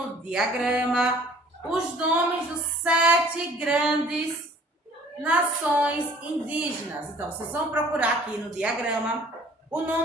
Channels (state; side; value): normal; both; correlation 0.53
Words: diagrama os nomes dos 7 grandes nações indígenas. Então, vocês vão procurar aqui no diagrama o